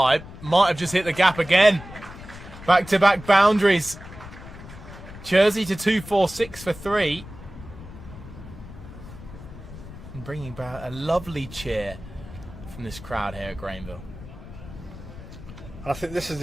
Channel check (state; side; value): noise; left; rumble, 15 dB below the sound